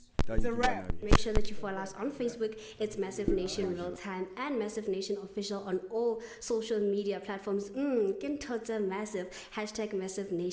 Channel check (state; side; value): identical; both; correlation 1.00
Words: It's a wrap. Make sure that you follow us on Facebook. It's Massive Nation Real Time and Massive Nation Official on all social media platforms. Massive. #Massive